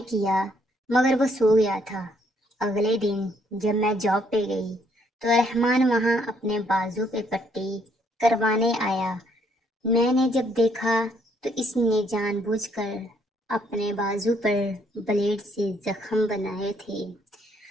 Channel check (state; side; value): normal; both; correlation 0.69